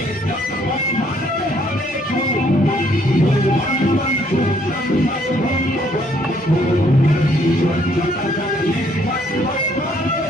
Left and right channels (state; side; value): normal; both; correlation 0.66